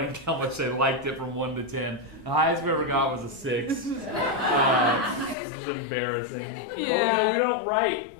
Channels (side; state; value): right; drops out; at 5.4 s